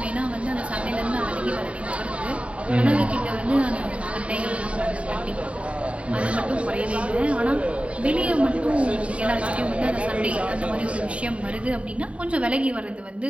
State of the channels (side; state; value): left; late; 0.063 ms